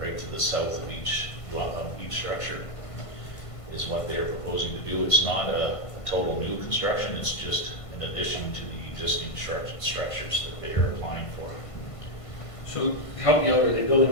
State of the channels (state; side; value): late; right; 1.5 ms